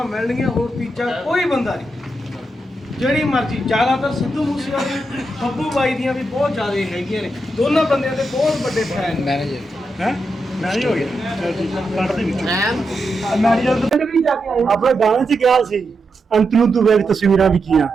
ਮਿਲਣਗੀਆਂ। ਹੋਰ ਤੀਜਾ ਕੋਈ ਬੰਦਾ ਨਹੀਂ। ਜਿਹੜੀ ਮਰਜ਼ੀ, ਜ਼ਿਆਦਾਤਰ ਸਿੱਧੂ ਮੂਸੇਵਾਲੇ ਬੱਬੂ ਬਾਈ ਦੀਆਂ ਵੀ ਬਹੁਤ ਜ਼ਿਆਦਾ ਹੈਗੀਆਂ ਨੇ। ਦੋਨਾਂ ਬੰਦਿਆਂ ਦੇ ਬਹੁਤ ਵੱਡੇ ਫੈਨ ਨੇ। ਹੈ ਮੈਨੇਜ ਹੋ ਗਿਆ। ਚਲ ਠੀਕ ਕੱਢ ਦੇ ਵਿੱਚ ਮੈਨੇਜਰ ਪਿੰਡ ਵੀ ਜਾ ਕੇ ਆਏ। ਆਪਣੇ ਗਾਣੇ 'ਚ ਕਿਹਾ ਸੀ ਅੰਤ ਨੂੰ ਤੂੰ ਵੇਖ ਤਸਵੀਰਾਂ ਵੀ ਕੀਆਂ।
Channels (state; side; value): normal; both; correlation 0.85